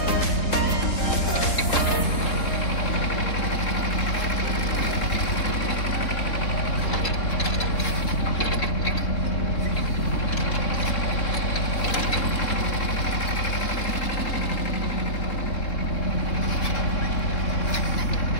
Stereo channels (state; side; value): late; right; 3.7 ms